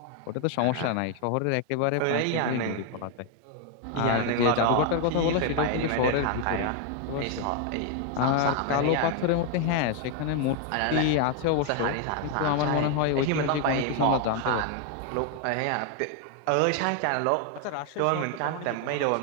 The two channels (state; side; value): different; both; correlation 0.01